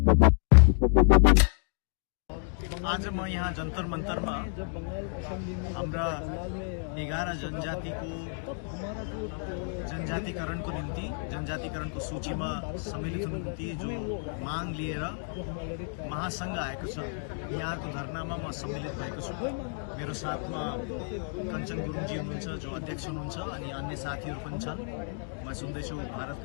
म यहाँ जन्तर मन्तरमा हाम्रा 11 जनजातिकरणको निम्ति जनजातिकरणको सूचीमा सम्मिलित हुनुको निम्ति जो माग लिएर महासंघ आएको छ। यहाँको धरनामा म सम्मिलित भएको छु। मेरो साथमा कञ्चन गुरुङजी हुनुहुन्छ जो अध्यक्ष हुनुहुन्छ अनि अन्य साथीहरू पनि छन्। म सुन्दैछु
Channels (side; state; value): right; silent; 58 dB below the other